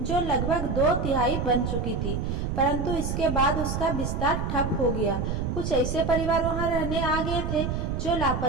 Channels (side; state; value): right; noise; rumble, 2 dB below the sound